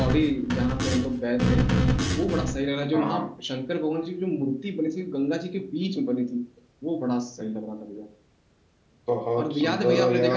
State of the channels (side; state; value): both; identical; correlation 1.00